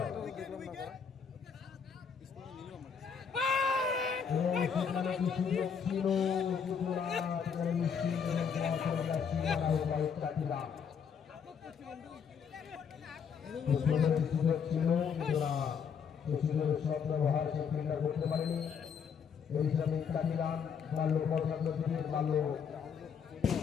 এবং সেখানে কিছু লোক ছিল, কিন্তু না, সেখানে নিশ্চিত এবং চলে যাচ্ছে বাড়ির কাঠিরা। সুযোগ ছিল, কিন্তু না, সেই সুযোগের সদ্ব্যবহার সে ফিল্ডার করতে পারেনি। এই হিসাবে কাঠি রান মারল বর্ষাত্ম দিনের, মারল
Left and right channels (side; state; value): right; quieter; 6.8 dB